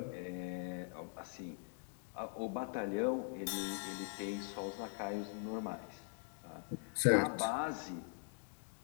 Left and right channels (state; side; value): silent; right; digital silence